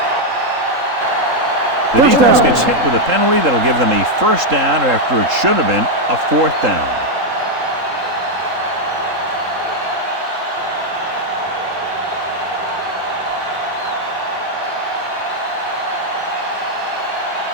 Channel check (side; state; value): left; late; 3.8 ms